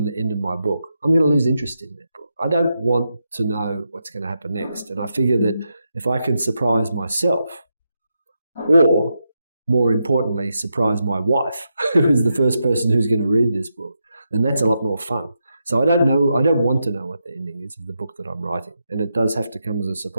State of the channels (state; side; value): inverted; both; correlation -0.85